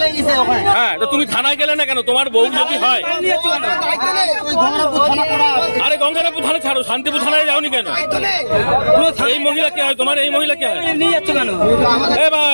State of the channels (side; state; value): both; inverted; correlation -1.00